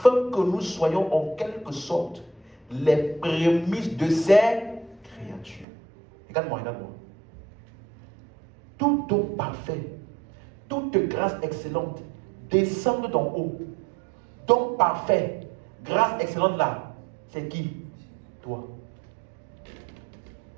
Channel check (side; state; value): left; drops out; at 5.7 s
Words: que nous soyons en quelque sorte les prémices de ses créatures. Regarde-moi, regarde-moi. Tout don parfait, toute grâce excellente descend d'en haut. Don parfait, grâce excellente là, c'est qui? Toi.